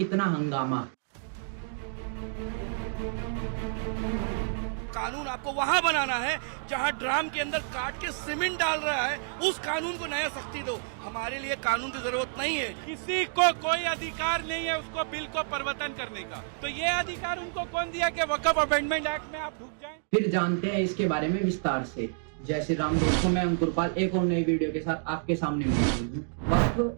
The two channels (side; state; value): left; silent; digital silence